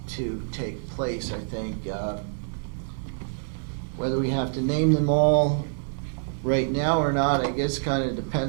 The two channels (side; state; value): left; silent; digital silence